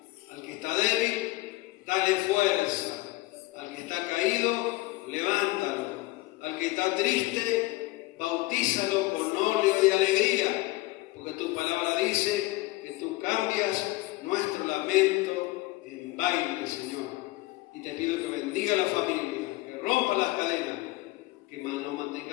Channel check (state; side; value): quieter; right; 20.4 dB